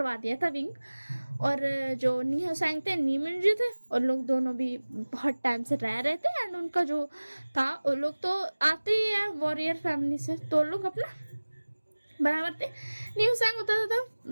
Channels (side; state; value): both; inverted; correlation -1.00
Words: दिया था विंग। और जो नीहा सैंग थे, नीमिन जी थे, और लोग दोनों भी बहुत टाइम से रह रहे थे, एंड उनका जो था वो लोग तो आते ही है वॉरियर फैमिली से, तो लोग अपना बराबर थे। न्यू सैंग होता था